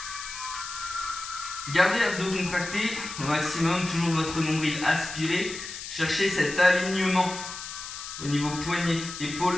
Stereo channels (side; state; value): left; noise; hiss, 9 dB below the sound